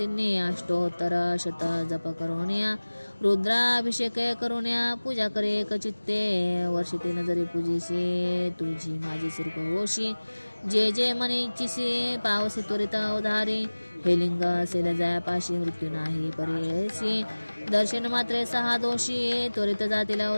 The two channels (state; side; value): inverted; both; correlation -1.00